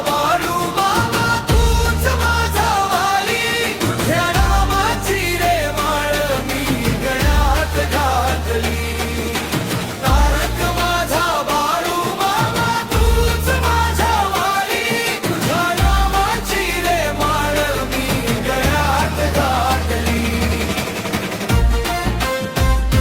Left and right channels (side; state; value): both; identical; correlation 1.00